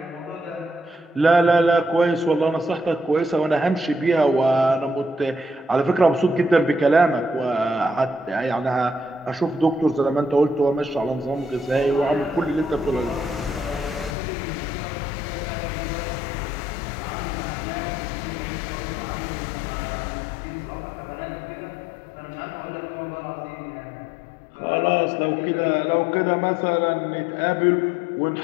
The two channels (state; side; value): drops out; right; at 14.2 s